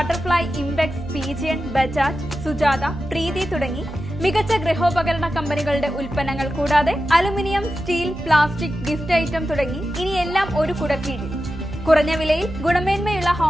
impex, pigeon, Bajaj, Sujata, Preethi തുടങ്ങി മികച്ച ഗൃഹോപകരണ കമ്പനികളുടെ ഉൽപ്പന്നങ്ങൾ കൂടാതെ aluminium, steel, plastic, gift item തുടങ്ങി ഇനി എല്ലാം ഒരു കുടക്കീഴിൽ. കുറഞ്ഞ വിലയിൽ ഗുണമേന്മയുള്ള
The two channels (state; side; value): noise; right; hum, 12 dB below the sound